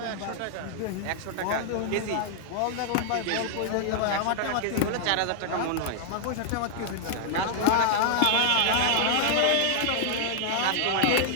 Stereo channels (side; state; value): both; different; correlation -0.01